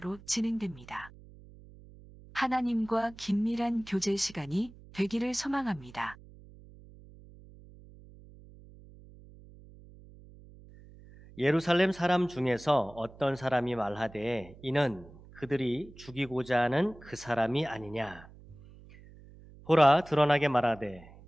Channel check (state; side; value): noise; right; hum, 21 dB below the sound